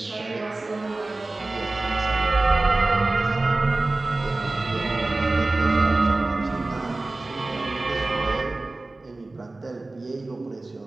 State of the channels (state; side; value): quieter; left; 3.1 dB